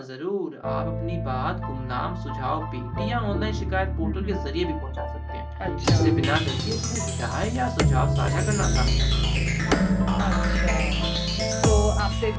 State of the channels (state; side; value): identical; both; correlation 1.00